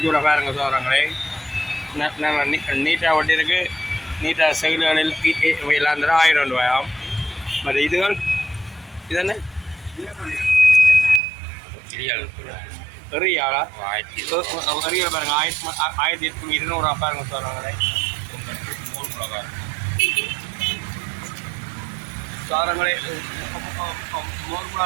கூட பாருங்க சோரங்களே. நீட்டாக ஒட்டி இருக்குது. நீட்டாக சைடுகளில் இல்லாத 1000 ரூபாயாம். மற்ற இதுகள் இதென்ன ரியாலா? ரியால் பாருங்க 1200 பாருங்க சோரங்களே. சோரங்களே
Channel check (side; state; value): left; drops out; at 11.2 s